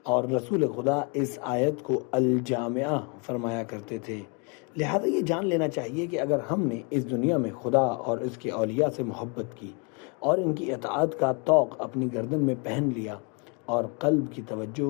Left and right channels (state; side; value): quieter; right; 34.6 dB